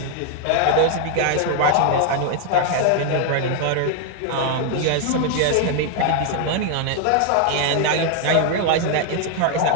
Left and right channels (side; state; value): both; different; correlation 0.00